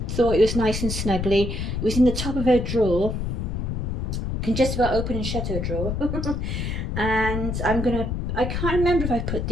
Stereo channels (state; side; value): noise; left; rumble, 2 dB below the sound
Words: thought it was nice and snuggly. It was in the top of her drawer. Can just about open and shut her drawer. And I can't remember if I put